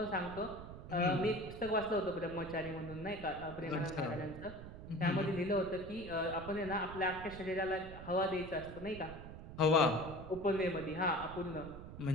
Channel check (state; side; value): noise; right; rumble, 12 dB below the sound